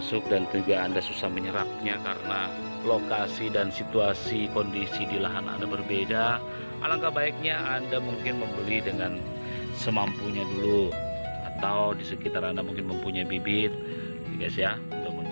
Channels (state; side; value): inverted; both; correlation -1.00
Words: dan juga Anda susah menyerapnya karena lokasi dan situasi kondisi di lahan Anda berbeda, alangkah baiknya Anda mungkin membeli dengan semampunya dulu, atau di sekitar Anda mungkin mempunyai bibit guys ya. Udah